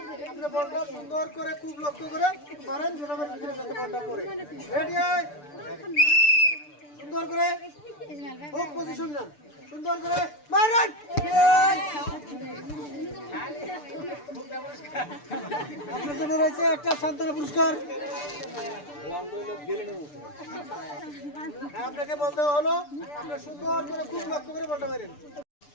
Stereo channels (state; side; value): late; right; 6.8 ms